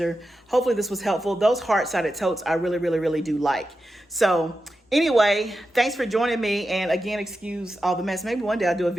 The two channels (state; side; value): normal; both; correlation 0.90